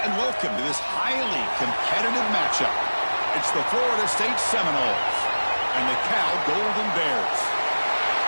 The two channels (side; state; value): both; inverted; correlation -1.00